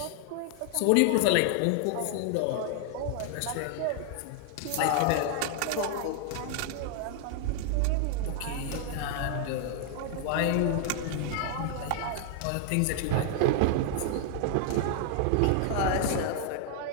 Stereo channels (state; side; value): different; both; correlation 0.00